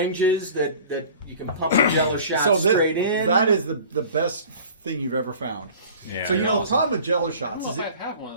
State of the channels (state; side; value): inverted; both; correlation -0.44